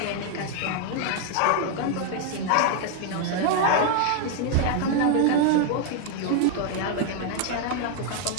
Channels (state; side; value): different; both; correlation 0.00